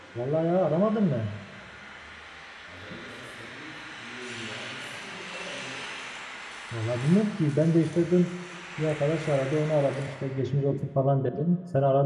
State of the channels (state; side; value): identical; both; correlation 1.00